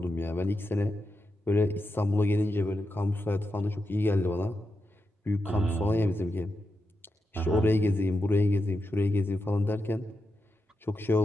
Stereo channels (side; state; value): both; normal; correlation 0.87